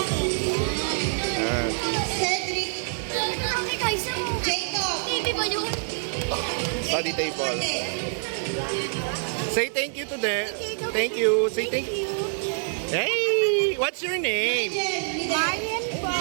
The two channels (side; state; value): left; silent; 61 dB below the other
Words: Cedric! Jacob! Study table. Say thank you to them. Thank you. Say thank you. Hey! What's your name? Marian po.